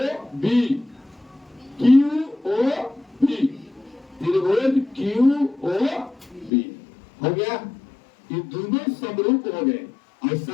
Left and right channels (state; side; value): drops out; right; at 6.5 s